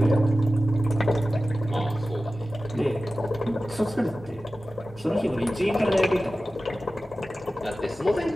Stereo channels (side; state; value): both; normal; correlation 0.95